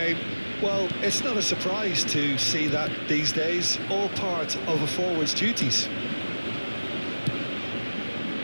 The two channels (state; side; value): inverted; both; correlation -1.00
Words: Well, it's not a surprise to see that these days, all part of a forward's duties.